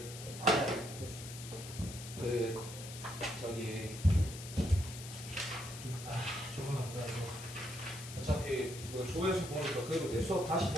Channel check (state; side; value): noise; left; hiss, 11 dB below the sound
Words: 저기 조금만 기다려. 어차피 어차피 그 조회수 보니까 그래도 내 수업 다시